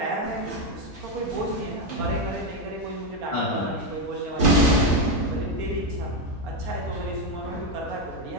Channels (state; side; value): normal; both; correlation 0.07